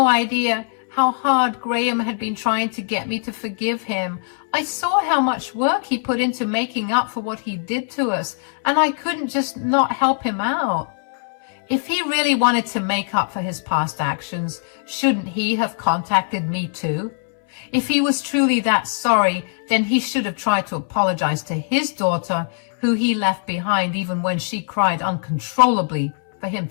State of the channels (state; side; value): silent; right; 65 dB below the other